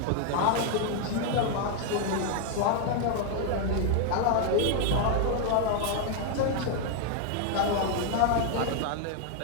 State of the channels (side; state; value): both; different; correlation 0.00